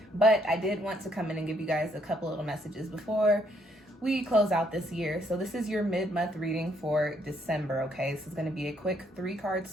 But I did want to come in and give you guys a couple little messages before we close out this year. So this is your mid-month reading for December, okay? This is going to be a quick 3-card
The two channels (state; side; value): normal; both; correlation 0.71